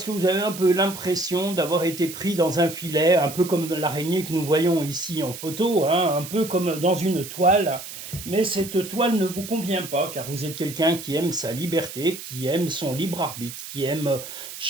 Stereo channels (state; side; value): noise; right; hiss, 11 dB below the sound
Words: que vous avez un peu l'impression d'avoir été pris dans un filet, un peu comme l'araignée que nous voyons ici en photo, hein, un peu comme dans une toile. Mais cette toile ne vous convient pas car vous êtes quelqu'un qui aime sa liberté, qui aime son libre arbitre, qui aime